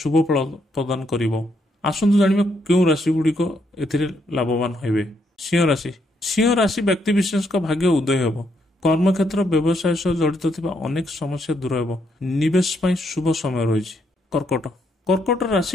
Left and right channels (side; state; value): both; normal; correlation 0.76